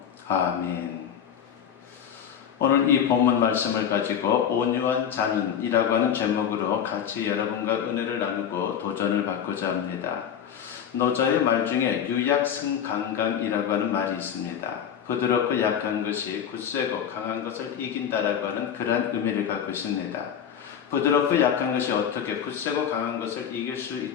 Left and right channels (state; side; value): quieter; right; 8.6 dB